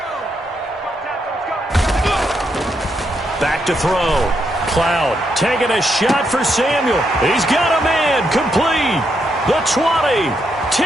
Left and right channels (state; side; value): normal; both; correlation 0.79